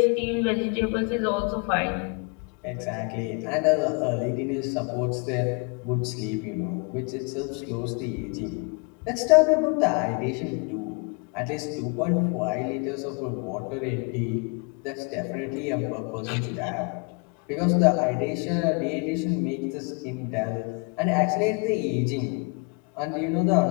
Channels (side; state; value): right; quieter; 33.8 dB